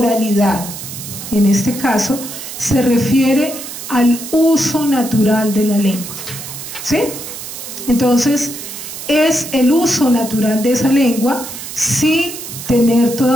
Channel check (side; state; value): right; noise; hiss, 10 dB below the sound